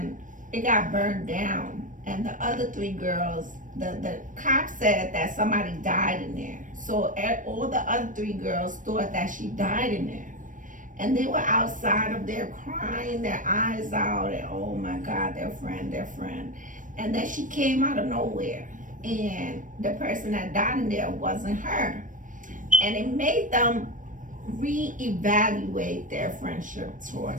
it got burned down. And the other three girls, the cop said that somebody died in there. So all the other three girls thought that she died in there. And they were outside of there crying their eyes out, and oh my God, their friend. And then she came out of nowhere, and the person that died in there wasn't her. And it made them reevaluate their friendship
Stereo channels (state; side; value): late; left; 0.38 ms